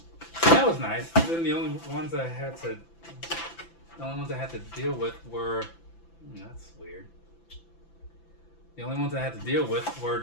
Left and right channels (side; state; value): right; late; 5.9 ms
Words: That was nice. Then the only ones I had to deal with were, that's weird. The only ones I had to deal with were